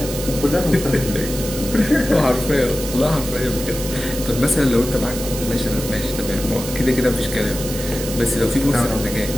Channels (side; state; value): right; noise; hiss, 8 dB below the sound